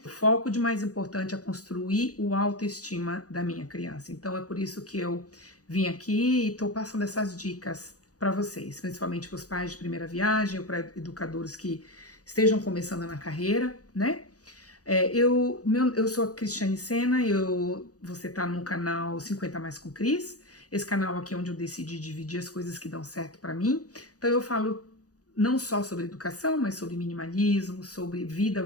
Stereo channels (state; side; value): late; right; 0.67 ms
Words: O foco de mais importante é construir o autoestima da minha criança. Então é por isso que eu vim aqui e estou passando essas dicas para vocês, principalmente para os pais de primeira viagem ou para educadores que estejam começando na carreira, né? Eu sou a Cristiane Sena, você tá no canal 50 Mais com Cris. Esse canal aqui é onde eu decidi dividir as coisas que dão certo para mim. Então eu falo não só sobre educação, mas sobre minimalismo, sobre vida